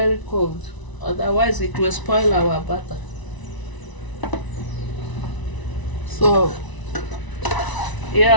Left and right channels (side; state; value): right; late; 1.0 ms